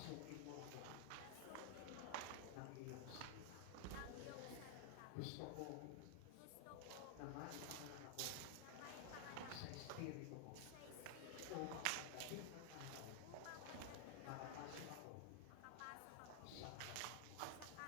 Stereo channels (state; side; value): different; both; correlation -0.01